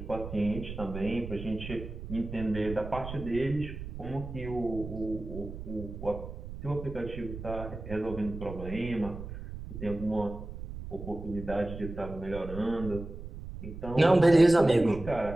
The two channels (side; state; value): right; noise; rumble, 10 dB below the sound